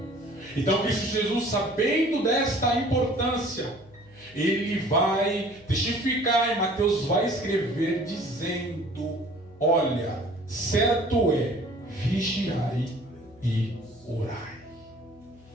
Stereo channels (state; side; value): noise; left; hum, 25 dB below the sound